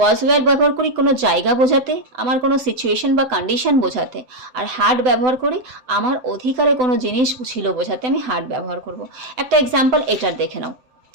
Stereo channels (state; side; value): late; left; 8.0 ms